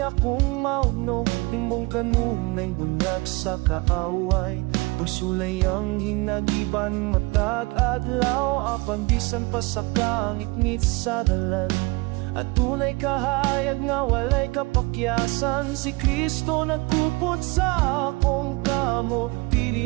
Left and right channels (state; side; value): quieter; left; 25.4 dB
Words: mauno, imong kanunay bunag sa kaaway. Pagsulay ang hinagiban matag adlaw, apan bisan pa sa kangit-ngit sa dalan. At tunay kahayag nga walay kapakyasan, si Kristo nagkupot sa akong kamo.